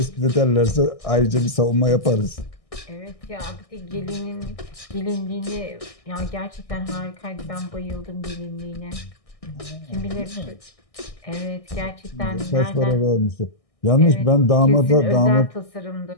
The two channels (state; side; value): late; right; 1.6 ms